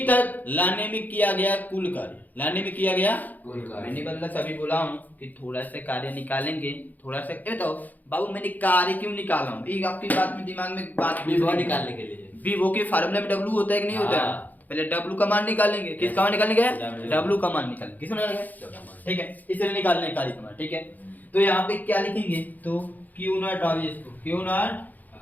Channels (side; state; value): right; late; 0.082 ms